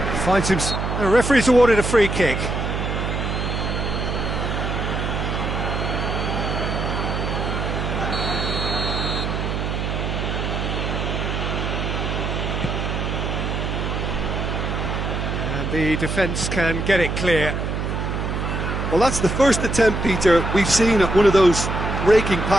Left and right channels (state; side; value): noise; right; hum, 2 dB below the sound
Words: Finds him. The referee's awarded a free kick. The defence can get it clear. Well, that's the first attempt, Peter, we've seen at one of those raking